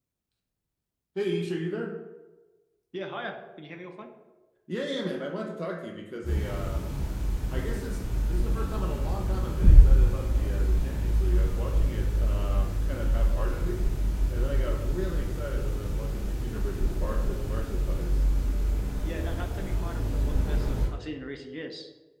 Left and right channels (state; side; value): identical; both; correlation 1.00